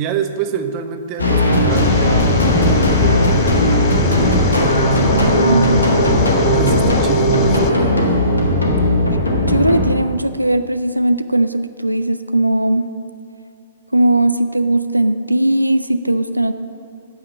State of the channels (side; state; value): both; inverted; correlation -0.56